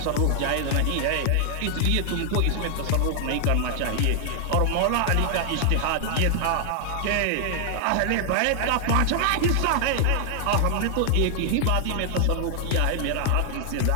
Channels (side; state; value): both; different; correlation 0.00